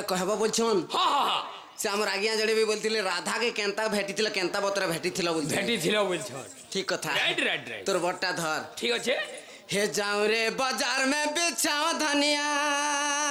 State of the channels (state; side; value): identical; both; correlation 1.00